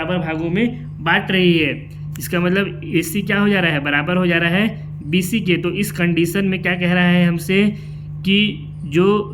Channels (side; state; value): both; identical; correlation 1.00